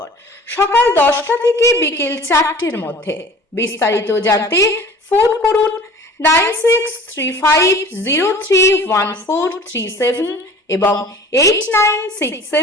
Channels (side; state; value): both; normal; correlation 0.45